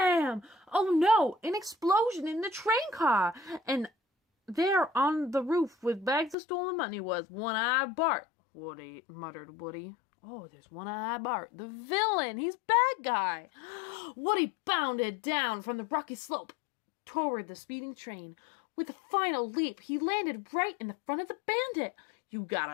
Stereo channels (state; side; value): drops out; right; at 6.4 s